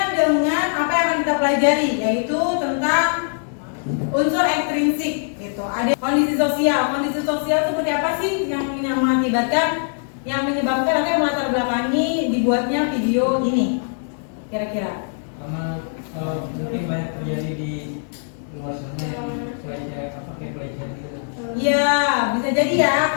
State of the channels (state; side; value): silent; right; digital silence